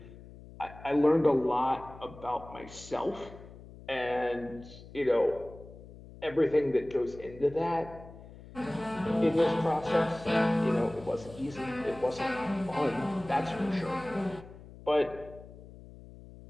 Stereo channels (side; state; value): left; noise; hum, 18 dB below the sound